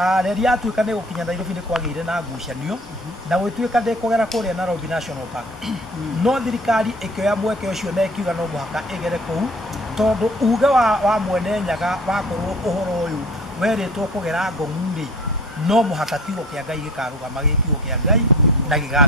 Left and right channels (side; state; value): both; normal; correlation 0.46